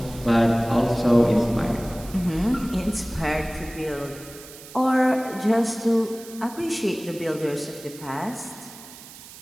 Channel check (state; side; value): noise; right; hiss, 17 dB below the sound